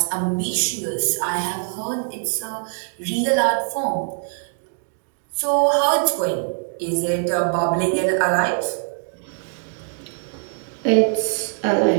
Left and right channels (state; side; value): silent; left; digital silence